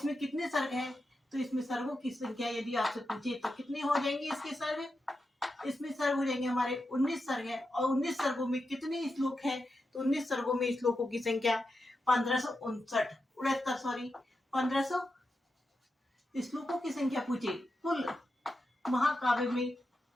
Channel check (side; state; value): both; normal; correlation 0.88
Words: कितने सर्ग है? तो इसमें सर्गों की संख्या यदि आपसे पूछे तो कितने हो जाएंगे इसके सर्ग? इसमें सर्ग हो जाएंगे हमारे 19 सर्ग है। और 19 सर्गों में कितने श्लोक है? तो 19 सर्गों में श्लोकों की संख्या 1569 श्लोकों की संख्या पूछे, कुल महाकाव्य में